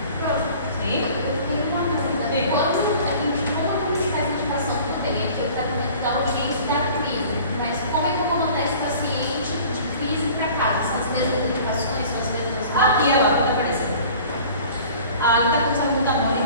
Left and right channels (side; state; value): both; inverted; correlation -0.46